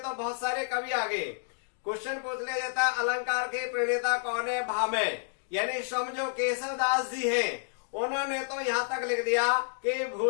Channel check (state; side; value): silent; right; digital silence